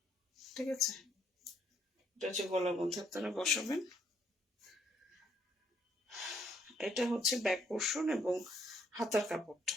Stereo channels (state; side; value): normal; both; correlation 0.70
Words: ঠিক আছে? এটা হচ্ছে গলার মধ্যে আপনারা বসাবেন। এটা হচ্ছে ব্যাক পোর্শন এবং হাতার কাপড়টা,